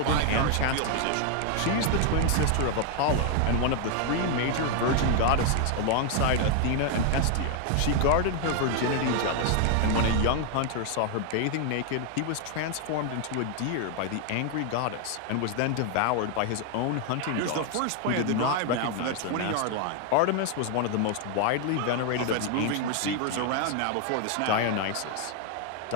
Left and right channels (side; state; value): both; different; correlation 0.00